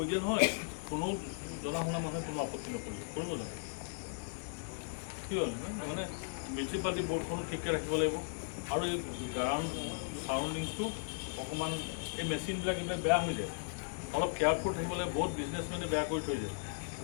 দিয়া নহয় কোনো জনা শুনা মানুহে কোনো আপত্তি নকৰিব কৰিব লাগে কি হ'ল মানে মিউনিচিপালিটি বৰ্ডখনো ঠিককৈ ৰাখিব লাগিব আৰু এই গ্ৰাউণ্ড চাৰাউণ্ডিংছটো অকণমান এই মেচিনবিলাক এইবিলাক বেয়া হৈ যায় অলপ কেয়াৰফুল থাকিব লাগে বহুত বিজনেছমেনে বেয়া কৰি থৈ যায়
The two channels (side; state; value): right; silent; digital silence